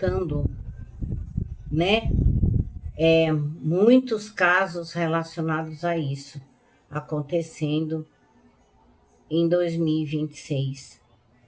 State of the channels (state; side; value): identical; both; correlation 1.00